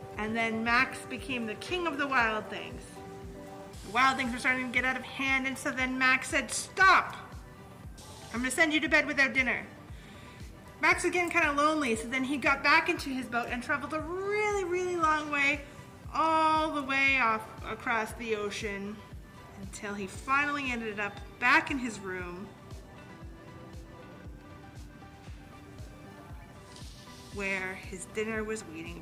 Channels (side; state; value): both; identical; correlation 1.00